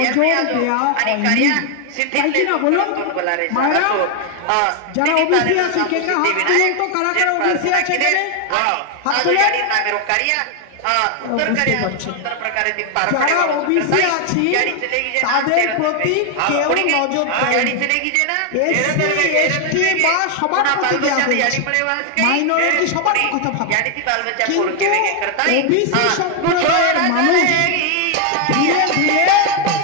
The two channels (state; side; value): different; both; correlation 0.00